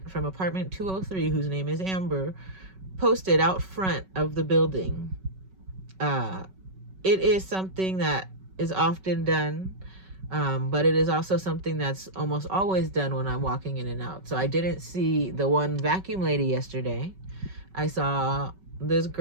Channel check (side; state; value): left; late; 5.3 ms